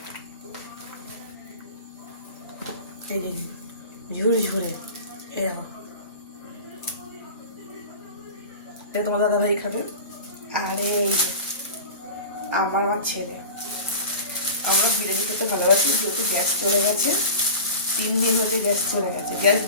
এই ঝুরে ঝুরে, এই দেখো এটা তোমার দাদা ভাই খাবে। আর এই যে আমার ছেলে, আমরা বিরিয়ানি খেতে ভালোবাসি, যেহেতু গ্যাস চলে গেছে 3 দিন হতে গ্যাস চলে গেছে, গ্যাস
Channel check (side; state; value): both; inverted; correlation -0.34